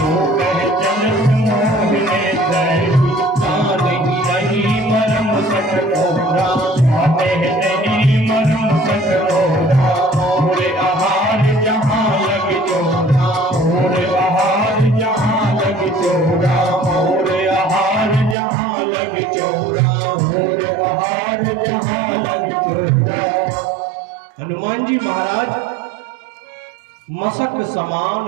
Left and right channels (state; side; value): drops out; left; at 18.4 s